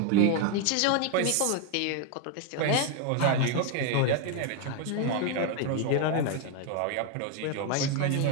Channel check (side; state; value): both; different; correlation 0.01